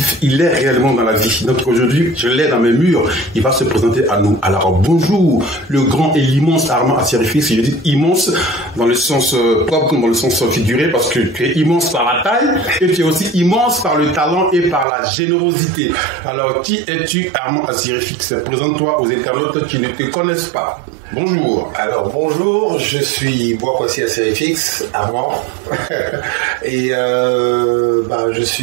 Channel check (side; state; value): left; drops out; at 14.9 s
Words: est réellement dans la vie. Donc aujourd'hui, je l'ai dans mes murs. Il va se présenter à nous. Alors bonjour, le grand et l'immense Armand Assirifix. Je dis immense dans le sens propre comme dans le sens figuré parce que tu es immense par la taille et tu es aussi immense par le talent et par la générosité. Alors qui es-tu, Armand Assirifix? Présente-toi aux internautes qui ne te connaissent pas. Bonjour. Alors bonjour, je suis Boakwasi Assirifix, Armand, et je